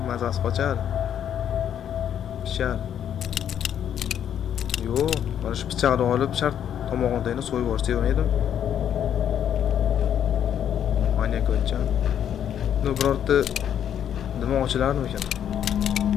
mazasi qochadi. Pishar. Yo'q, mana shu pichoqni olib shart tomog'ini so'yib yuborsa yemaydim. Manyak o'yincha. No birorta nima ochilarmi ekan?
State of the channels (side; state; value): right; quieter; 9.5 dB